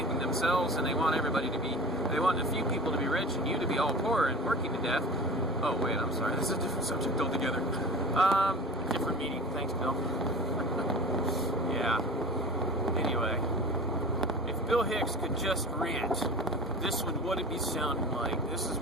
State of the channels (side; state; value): both; normal; correlation 0.36